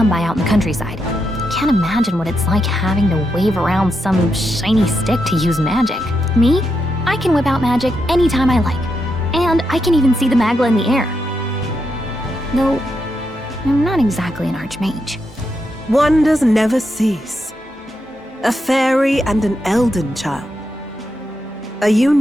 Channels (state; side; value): normal; both; correlation 0.83